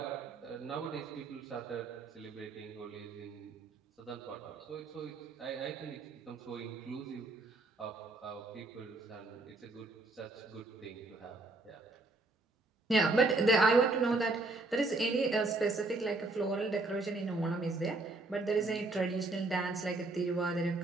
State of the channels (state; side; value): quieter; left; 3.2 dB